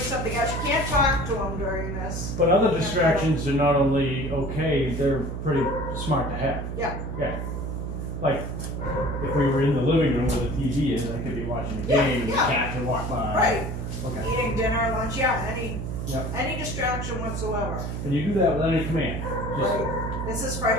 else, you can't talk to him during this. But other distractions are not only okay, they're pretty smart to have. Yeah. Yeah. Like, if we were in the living room where the TV is, I could be watching a Yeah, game and the yeah. cat could walk by. Right. Okay. Eating dinner, lunch, yeah, Yep. any distraction whatsoever. And you do that without any command. Just, Right. This is for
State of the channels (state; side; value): noise; right; hum, 4 dB below the sound